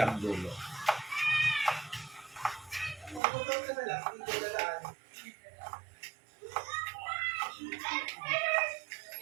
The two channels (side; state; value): left; drops out; at 3.2 s